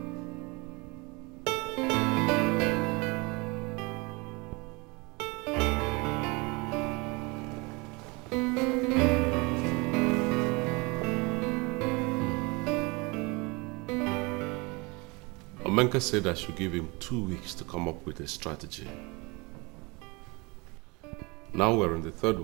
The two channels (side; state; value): left; quieter; 27.0 dB